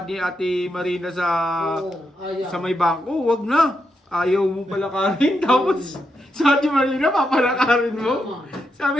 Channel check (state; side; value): normal; both; correlation 0.83